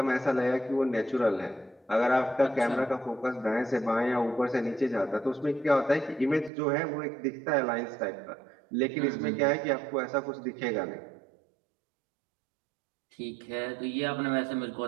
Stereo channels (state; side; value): drops out; left; at 6.5 s